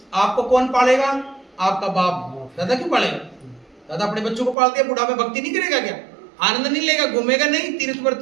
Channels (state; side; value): drops out; left; at 4.5 s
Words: आपको कौन पालेगा? आपका बाप। दादा क्यों पालेगा? दादा अपने बच्चों को पालते हैं, बुढ़ा में भक्ति नहीं करेगा क्या? आनंद नहीं लेगा, घूमेगा नहीं,